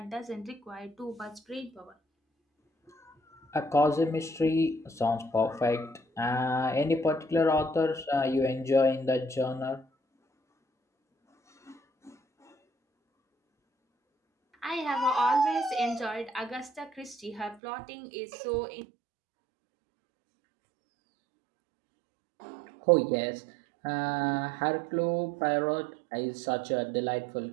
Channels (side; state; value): left; drops out; at 17.6 s